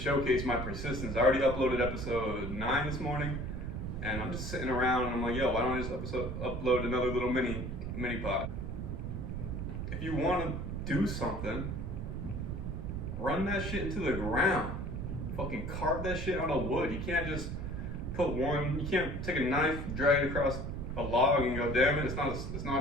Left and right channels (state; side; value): noise; right; rumble, 4 dB below the sound